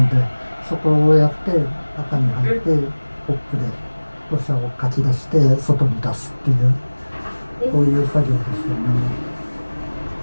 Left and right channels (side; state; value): both; inverted; correlation -1.00